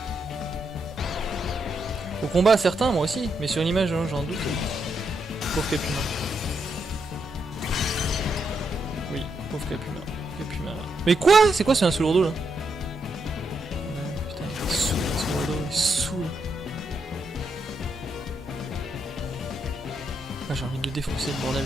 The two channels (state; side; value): normal; both; correlation 0.81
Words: Au combat, certains, moi aussi, mais sur une image, j'en doute. Pauvre Capuma. Oui, pauvre Capuma. Capuma. Mais quoi? C'est quoi, c'est un sous-lourdeau là? Ouais, putain, il est saoul, un sous-lourdeau, il saoule. Ah, j'ai envie de le défoncer, le bordel.